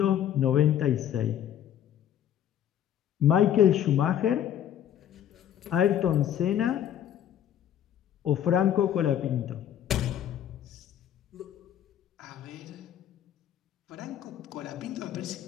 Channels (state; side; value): quieter; right; 10.3 dB